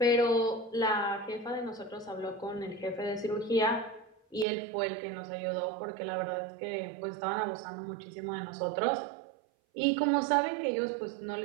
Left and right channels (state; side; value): drops out; left; at 4.5 s